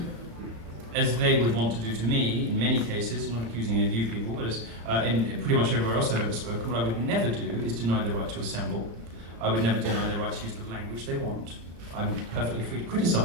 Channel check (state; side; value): late; left; 35 ms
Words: as they would want to do to me, in many cases, I'm not accusing any of you people, but as in pretty much everywhere else I've ever spoken, what I would never do is deny their right to assemble. I would never deny their right to use the language they want. I'm perfectly free to